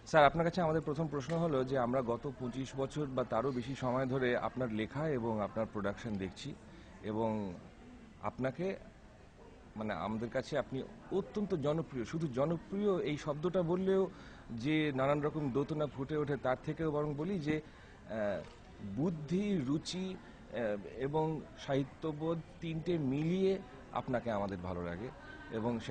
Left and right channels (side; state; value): both; identical; correlation 1.00